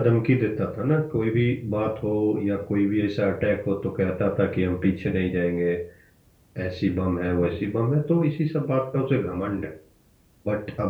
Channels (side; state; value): both; identical; correlation 1.00